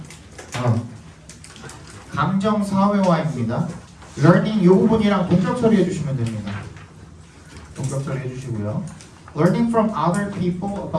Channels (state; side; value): identical; both; correlation 1.00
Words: 감정 사회화입니다. learning 이 부분이랑 동적 처리해 주시면 됩니다. 동적 처리해 주시고요. learning from other people